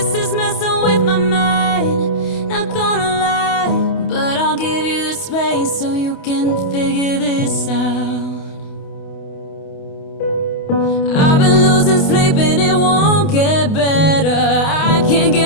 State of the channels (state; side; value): late; right; 28 ms